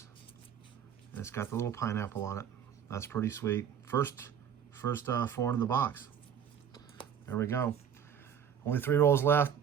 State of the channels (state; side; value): quieter; left; 8.4 dB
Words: And it's got the little pineapple on it. That's pretty sweet. First foreign in the box. There we go. Only 3 rolls left.